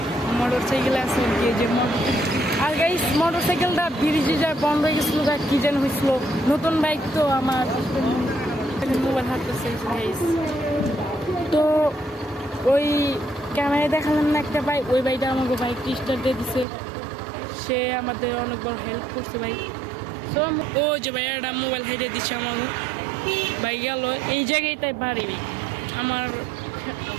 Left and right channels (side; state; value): left; drops out; at 16.7 s